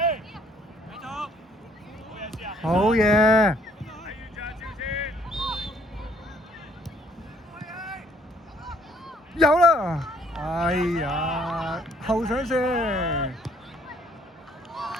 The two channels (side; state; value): both; normal; correlation 0.63